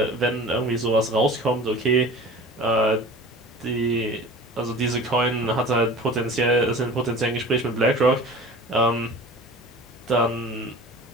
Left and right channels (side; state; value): both; normal; correlation 0.39